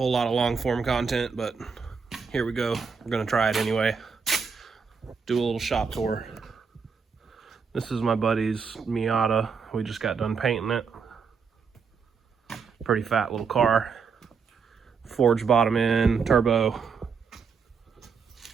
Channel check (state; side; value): quieter; left; 5.6 dB